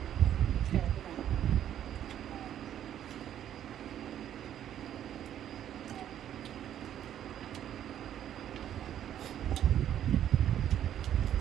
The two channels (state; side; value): quieter; left; 10.6 dB